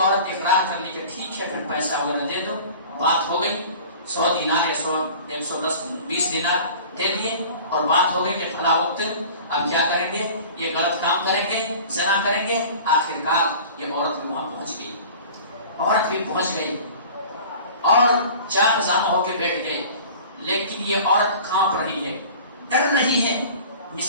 اقرار کر لی کہ ٹھیک ہے پھر پیسہ وغیرہ دے دو، بات ہو گئی، 100 دینار یا 100 110 20 دینار دے دیے، اور بات ہو گئی کہ فلاں وقت اب کیا کریں گے، یہ غلط کام کریں گے، زنا کریں گے۔ آخرکار یہ عورت بھی وہاں پہنچ گئی، عورت بھی پہنچ گئی اور 4 خزانوں ہو کے بیٹھ گئے، لیکن یہ عورت کانپ رہی ہے، ڈر رہی ہے،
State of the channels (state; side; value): inverted; both; correlation -0.42